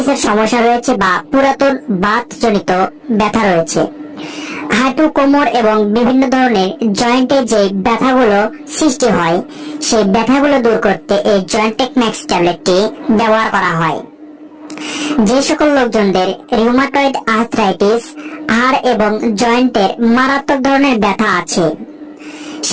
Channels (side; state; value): both; identical; correlation 1.00